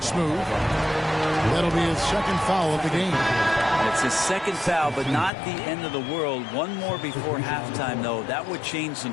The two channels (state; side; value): drops out; right; at 5.3 s